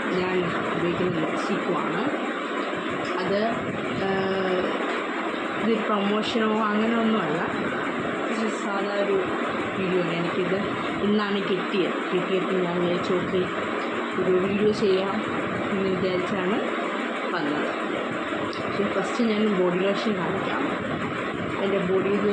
ഞാൻ ഉപയോഗിക്കുന്ന ലിപ്സ്റ്റിക്കുമാണ്. അത് ഇത് പ്രൊമോഷനോ അങ്ങനെ ഒന്നുമല്ല, സാധാ ഒരു വീഡിയോ ആണ്. എനിക്കിത് ഇന്നാണ് കിട്ടിയപ്പോൾ ഞാൻ വിചാരിച്ചു ഓക്കെ ഒരു വീഡിയോ ചെയ്യാം എന്ന് വിചാരിച്ചാണ് വന്നത്. പക്ഷേ ഫസ്റ്റ് ഞാൻ ബോഡി ലോഷൻ കാണിക്കാം. എൻ്റെ ബോഡി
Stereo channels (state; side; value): identical; both; correlation 1.00